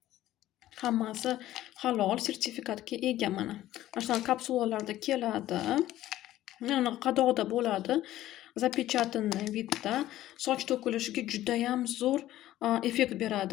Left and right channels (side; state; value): right; quieter; 14.2 dB